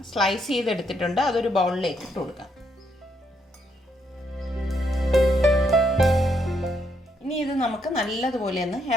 സ്ലൈസ് ചെയ്തെടുത്തിട്ടുണ്ട്. അതൊരു ബൗളിലേക്ക് ഇട്ട് കൊടുക്കാം. ഇനി ഇത് നമുക്ക് നല്ലതുപോലെ ഒന്ന്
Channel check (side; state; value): both; normal; correlation 0.75